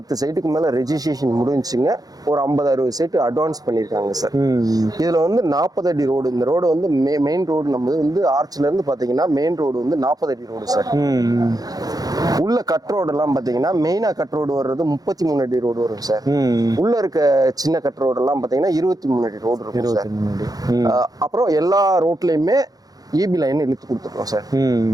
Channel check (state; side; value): late; left; 0.18 ms